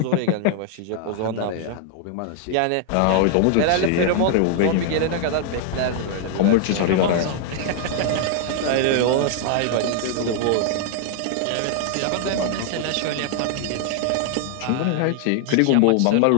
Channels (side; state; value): both; different; correlation 0.00